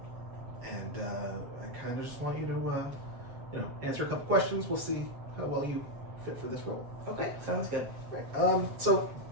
kind of just want you to, answer a couple questions. We'll see how well you fit for this role. Okay, sounds good. Right. So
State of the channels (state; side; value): late; left; 7.6 ms